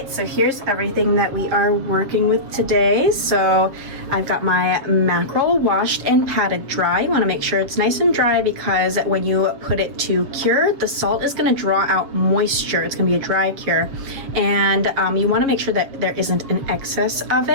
so here's everything that we are working with today. So I've got my mackerel washed and patted dry. You want to make sure it's nice and dry because when you put it to cure, the salt is going to draw out moisture. It's going to be a dry cure, and you want to make sure that there isn't an excess of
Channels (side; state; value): left; late; 7.2 ms